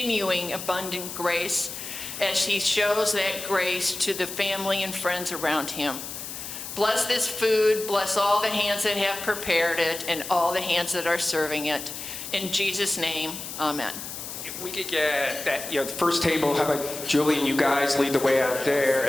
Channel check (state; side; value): noise; left; hiss, 9 dB below the sound